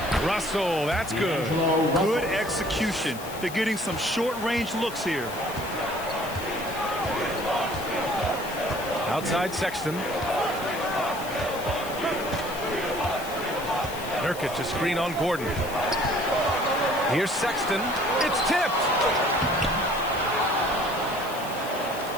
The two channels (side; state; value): left; noise; hiss, 14 dB below the sound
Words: Russell, that's good. Good execution. They're getting some short-range looks here. Outside Sexton. Nurkic, a screen on Gordon. Here's Sexton. It's tipped.